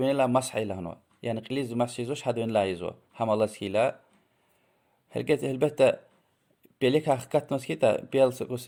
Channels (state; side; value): identical; both; correlation 1.00